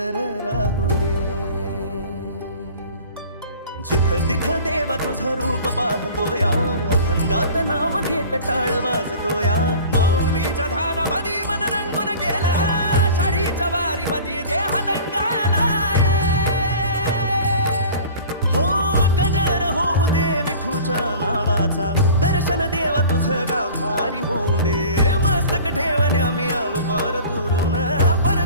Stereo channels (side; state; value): both; inverted; correlation -0.42